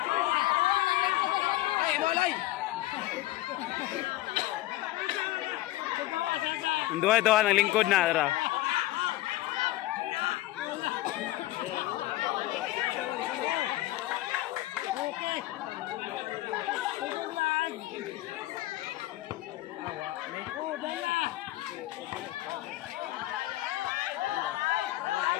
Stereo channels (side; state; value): right; quieter; 16.8 dB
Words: Dua-dua ng lingkod na, tara.